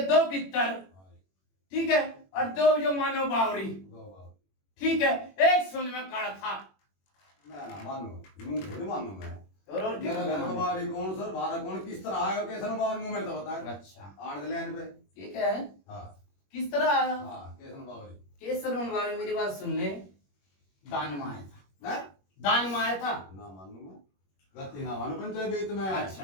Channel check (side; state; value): right; late; 21 ms